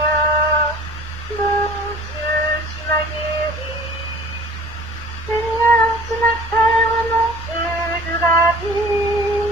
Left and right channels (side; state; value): left; noise; rumble, 24 dB below the sound